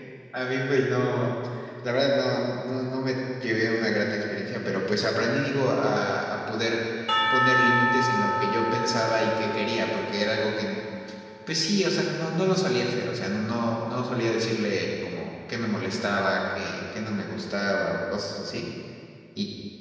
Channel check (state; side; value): identical; both; correlation 1.00